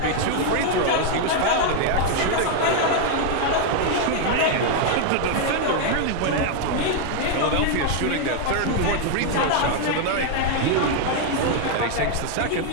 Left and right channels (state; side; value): different; both; correlation 0.00